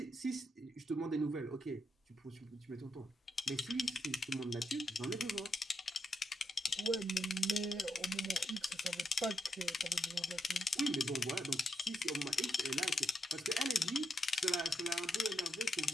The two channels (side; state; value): both; normal; correlation 0.83